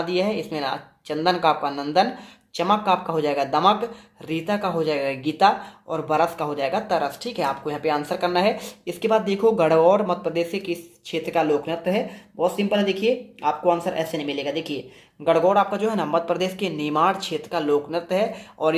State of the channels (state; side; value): identical; both; correlation 1.00